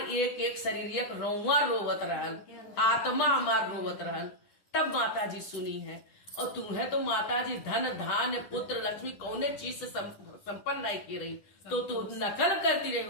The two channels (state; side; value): late; right; 10 ms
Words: एक शरीर एक रोवा रोवत रहल, आत्मा हमार रोवत रहल। तब माता जी सुनी है। और तुम्हें तो माता जी धन धान्य पुत्र लक्ष्मी कौने चीज से संपन्न नहीं की रही, तो तू नकल करती रही